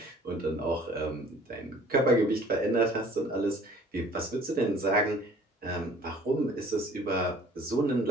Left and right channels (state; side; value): normal; both; correlation 0.52